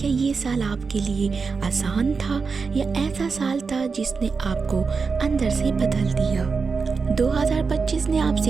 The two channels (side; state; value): left; quieter; 5.0 dB